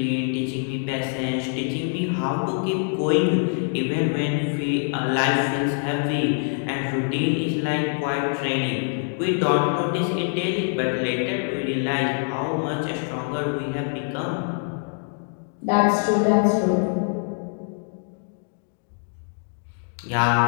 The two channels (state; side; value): silent; right; 55 dB below the other